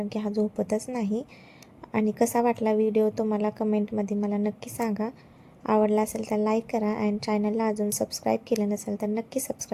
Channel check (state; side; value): identical; both; correlation 1.00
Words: की हा झोपतच नाही. आणि कसा वाटला व्हिडिओ तुम्हाला कमेंटमध्ये मला नक्की सांगा. आवडला असेल तर लाईक करा, आणि चॅनलला अजून सबस्क्राईब केलं नसेल तर नक्की